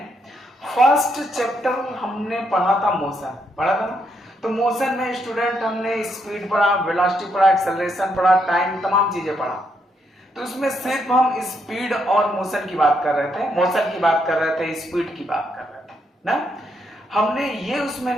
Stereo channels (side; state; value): both; normal; correlation 0.77